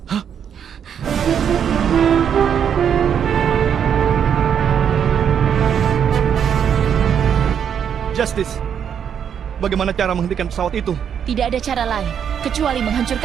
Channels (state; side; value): quieter; left; 8.2 dB